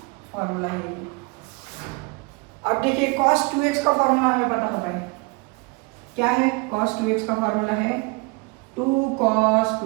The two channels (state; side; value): quieter; left; 28.6 dB